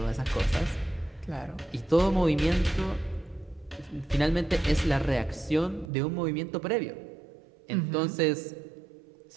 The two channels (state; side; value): drops out; left; at 5.9 s